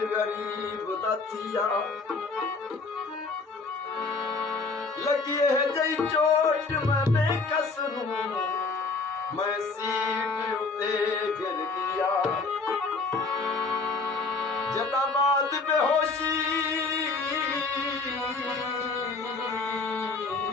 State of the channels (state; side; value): quieter; right; 4.1 dB